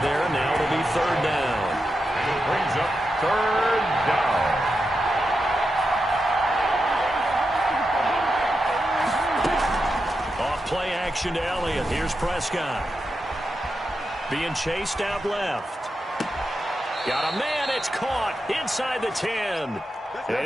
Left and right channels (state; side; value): normal; both; correlation 0.88